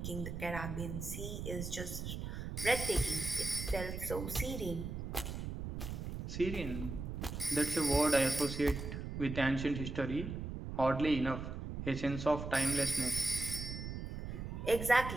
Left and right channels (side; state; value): right; noise; rumble, 6 dB below the sound